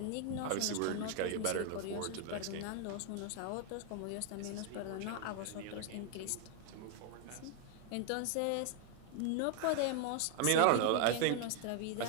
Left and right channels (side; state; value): both; different; correlation 0.00